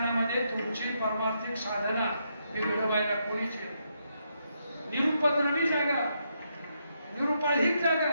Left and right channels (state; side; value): inverted; both; correlation -0.79